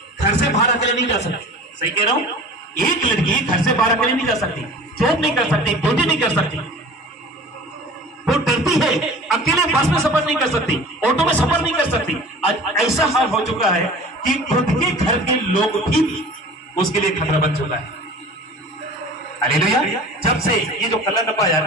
घर से बाहर अकेले नहीं जा सकती, सही कह रहा हूं, एक लड़की घर से बाहर अकेले नहीं जा सकती, जॉब नहीं कर सकती, ड्यूटी नहीं कर सकती, वो डरती है, अकेले बस में सफर नहीं कर सकती, ऑटो में सफर नहीं कर सकती। आज ऐसा हाल हो चुका है कि खुद के घर के लोग भी उसके लिए खतरा बन चुका है। हालेलुया। जब से ये जो कलर डब्बा आया ना,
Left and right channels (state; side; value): normal; both; correlation 0.41